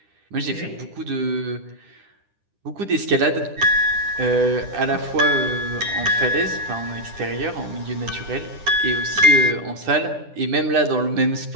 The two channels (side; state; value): left; late; 9.9 ms